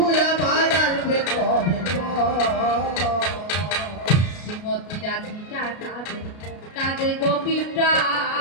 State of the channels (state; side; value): late; right; 33 ms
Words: আমার আসবে কবে শ্রীমতী রাধিকা কাঁদে কাঁদে গোপী